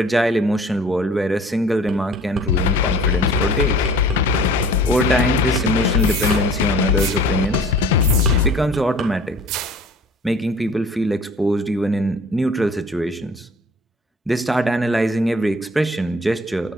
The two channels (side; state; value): both; normal; correlation 0.48